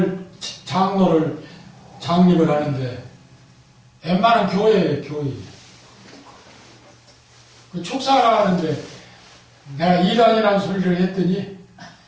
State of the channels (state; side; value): identical; both; correlation 1.00